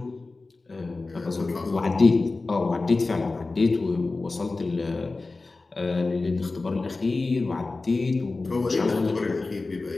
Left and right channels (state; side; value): quieter; right; 3.5 dB